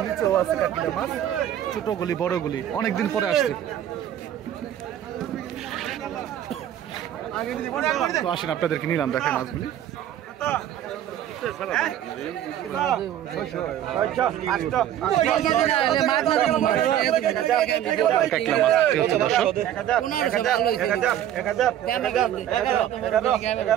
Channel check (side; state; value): left; quieter; 11.2 dB